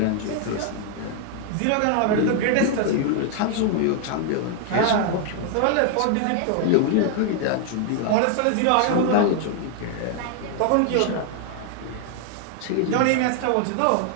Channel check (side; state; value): both; different; correlation 0.00